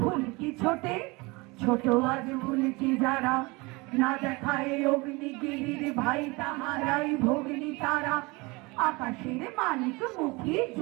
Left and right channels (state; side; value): quieter; left; 25.1 dB